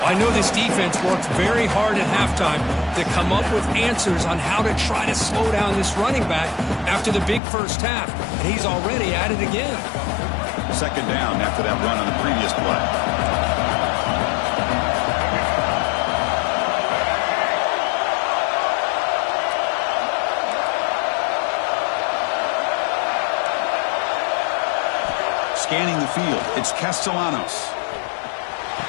I know this defense worked very hard at halftime to come up with answers on how to try to slow down this running back after the big first half. And he's already at it again. Second down after that run on the previous play. Scanning the field, it's Castellanos.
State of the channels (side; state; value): right; drops out; at 7.4 s